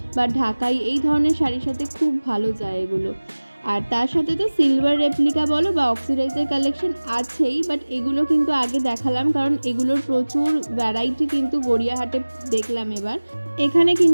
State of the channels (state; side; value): inverted; both; correlation -1.00